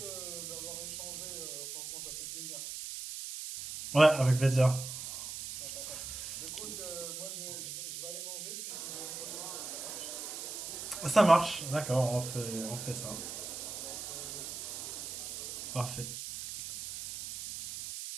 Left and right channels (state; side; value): noise; right; hiss, 7 dB below the sound